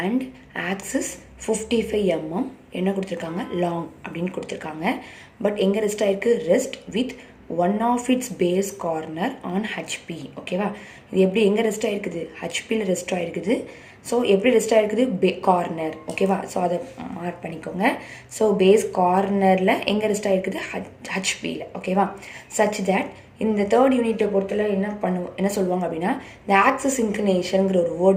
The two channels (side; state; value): both; identical; correlation 1.00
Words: and axis 55 mm என்ன கொடுத்துருக்காங்க, லாங் அப்படின்னு கொடுத்துருக்காங்க. பட் எங்கே ரெஸ்ட் ஆகிருக்கு, rest with one of its base corner on HP. ஓகேவா, இது எப்படி எங்கே ரெஸ்ட் ஆகிருக்குது, ஹெச்பியில் ரெஸ்ட் ஆகிருக்குது. ஸோ எப்படி ரெஸ்ட் ஆகிருக்குது, கார்னர். ஓகேவா, ஸோ அதை மார்க் பண்ணிக்கோங்க. ஸோ பேஸ் கார்னரில் எங்கே ரெஸ்ட் ஆகிருக்குது, ஹெச்பியில். ஓகேவா, சச் தேட் இந்த தேர்ட் யூனிட்டை பொறுத்தல என்ன சொல்லுவாங்க அப்படின்னா, இந்த ஆக்சிஸ் இன்க்ளினேஷனுங்கிற ஒரு